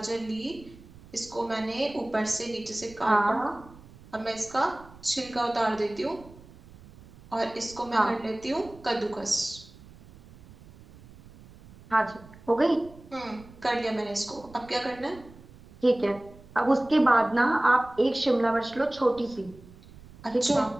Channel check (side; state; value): right; noise; rumble, 21 dB below the sound